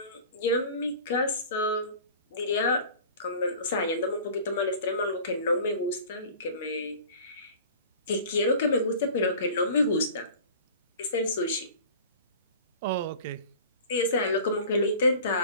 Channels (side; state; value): both; inverted; correlation -0.42